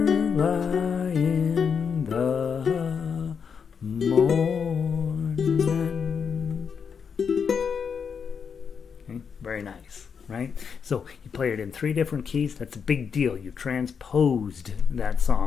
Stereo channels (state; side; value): quieter; right; 6.5 dB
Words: in the morning. Okay, very nice. Right? So you play it in 3 different keys. That's a big deal. You transposed that